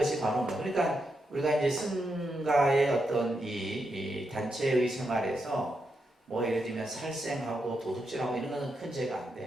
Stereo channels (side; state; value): both; normal; correlation 0.84